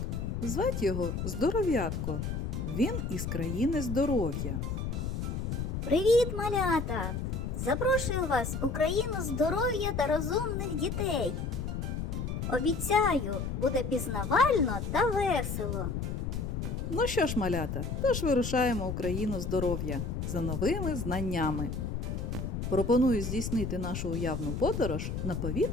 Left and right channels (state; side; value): noise; left; rumble, 3 dB below the sound